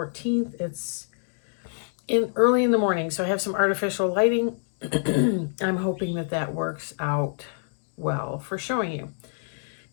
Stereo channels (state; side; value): silent; right; digital silence